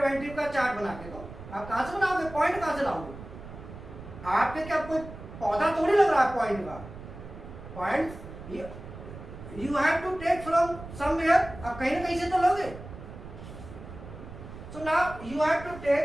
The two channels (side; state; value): right; noise; rumble, 13 dB below the sound